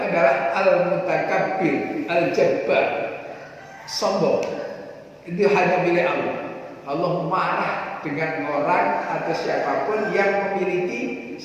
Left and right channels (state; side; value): identical; both; correlation 1.00